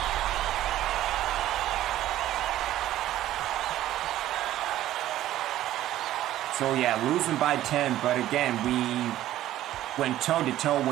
So yeah, losing by 10, but again, we went toe-to-toe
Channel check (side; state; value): left; quieter; 13.6 dB